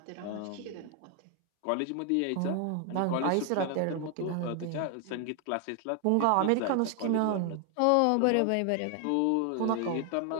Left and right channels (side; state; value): both; different; correlation 0.00